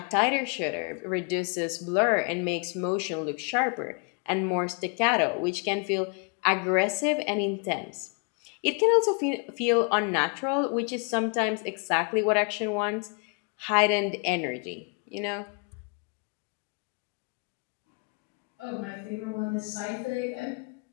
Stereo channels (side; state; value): right; quieter; 36.3 dB